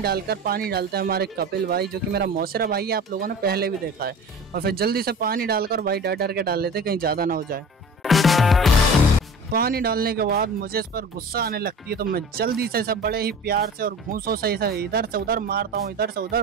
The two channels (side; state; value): both; normal; correlation 0.37